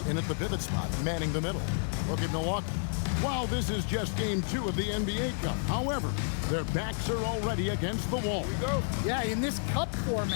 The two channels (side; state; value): right; silent; digital silence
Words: in at the pivot spot, manning the middle. Look at Milwaukee. While this is just game 2 of the NBA Cup, however, their backs are already against the wall. Here we go. Yeah, in this cup